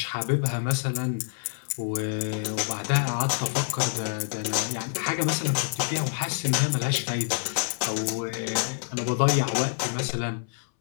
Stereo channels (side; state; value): right; silent; 60 dB below the other